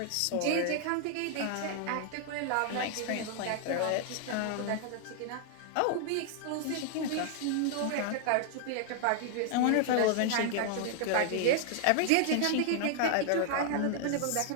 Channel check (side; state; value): both; different; correlation 0.00